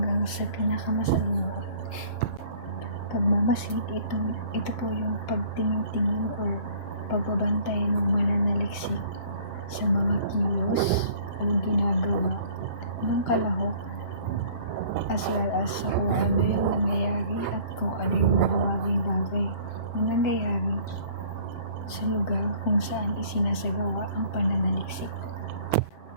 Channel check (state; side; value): late; right; 7.8 ms